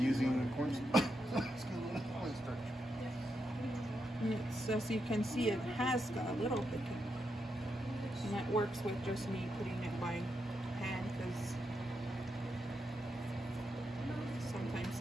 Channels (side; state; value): both; normal; correlation 0.84